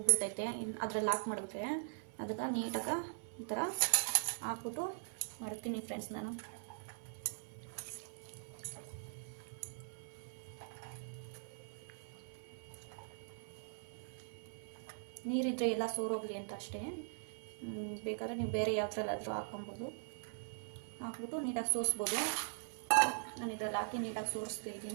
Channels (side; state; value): left; silent; 50 dB below the other